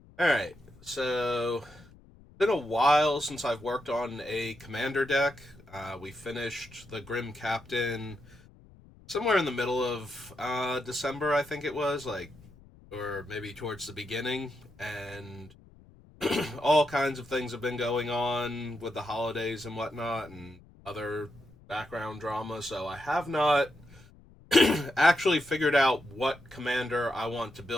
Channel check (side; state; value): left; noise; rumble, 24 dB below the sound